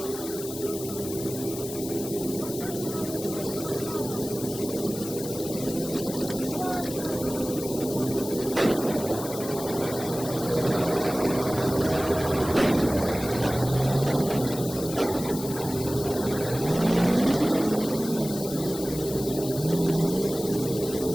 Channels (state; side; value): noise; left; hiss, 10 dB below the sound